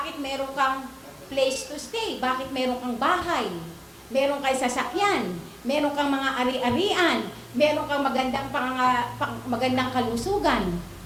meron kang place to stay? Bakit meron kang bahay? Meron kang sasakyan? Meron kang mga ari-arian? Meron kang magandang kalusugan?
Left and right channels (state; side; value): identical; both; correlation 1.00